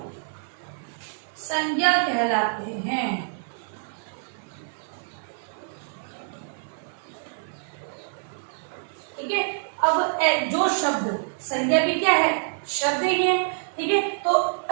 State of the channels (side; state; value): left; silent; 61 dB below the other